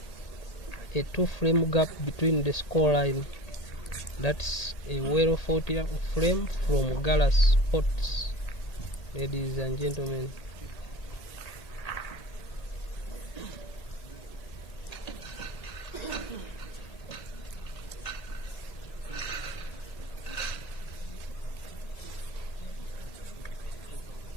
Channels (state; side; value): late; right; 1.8 ms